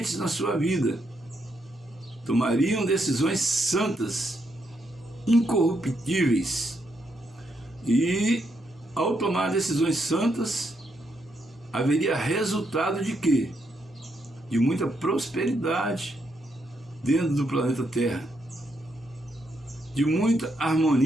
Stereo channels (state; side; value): normal; both; correlation 0.78